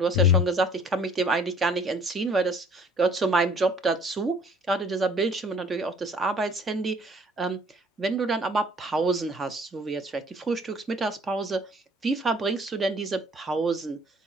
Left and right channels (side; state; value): both; normal; correlation 0.55